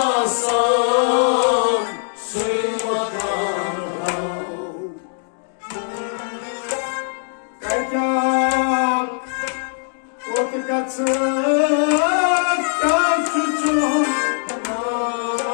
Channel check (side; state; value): right; silent; digital silence